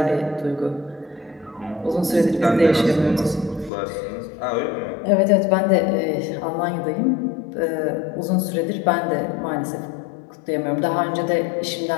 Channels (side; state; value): right; drops out; at 3.7 s